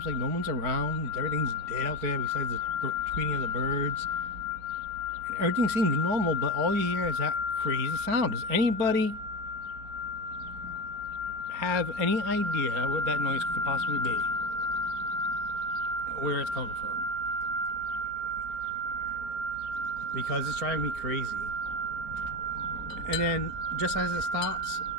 like no one's around. Everything's dead out there besides the tweeting of the birds. And everything seems normal, but all you hear is that crazy sound. Does anybody have any idea what that noise could possibly be? Where it's coming from? Because it's driving me crazy. And then just as it stops,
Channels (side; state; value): left; late; 4.5 ms